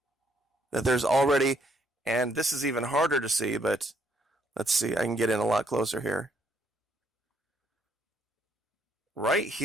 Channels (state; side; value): normal; both; correlation 0.70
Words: That there's already, and this is even harder to see, but let's see, I can get in a lot closer here. Right